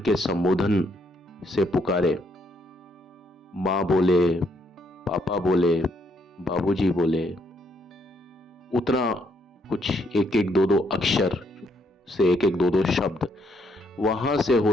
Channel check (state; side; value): normal; both; correlation 0.72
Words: संबोधन से पुकारे। माँ बोले, पापा बोले, बाबूजी बोले, उतना कुछ एक एक दो दो अक्षर से एक एक दो दो शब्द, वहां से